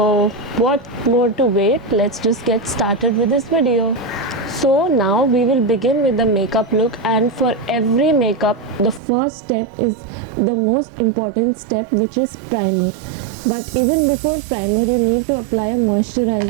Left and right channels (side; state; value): left; drops out; at 9.0 s